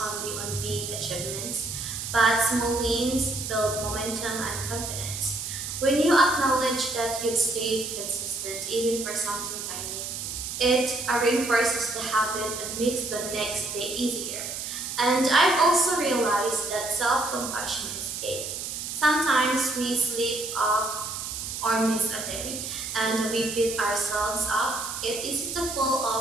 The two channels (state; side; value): noise; right; hiss, 6 dB below the sound